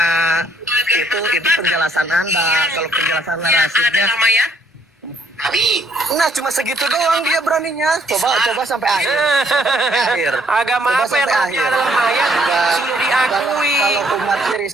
Itu penjelasan Anda. Kalau penjelasan Rashidnya. Nah cuma segitu doang dia beraninya. Coba sampai akhir. Agama apa yang rohnya adalah mayat sudah diakui. Kalau umat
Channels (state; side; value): normal; both; correlation 0.67